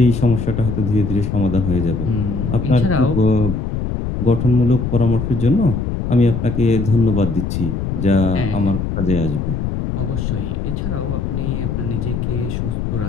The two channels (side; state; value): left; noise; rumble, 3 dB below the sound